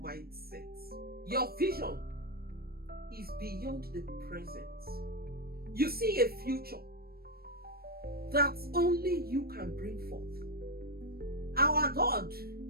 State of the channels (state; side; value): late; left; 0.44 ms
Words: Your vision is beyond the present. You see a future that only you can bring forth. Our God